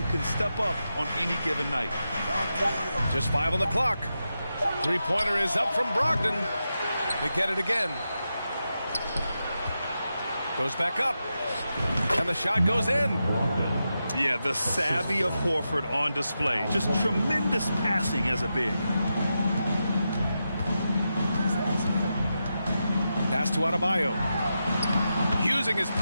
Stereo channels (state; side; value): inverted; both; correlation -0.88